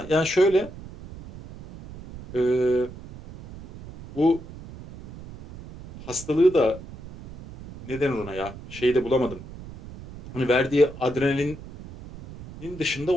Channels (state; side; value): noise; right; rumble, 15 dB below the sound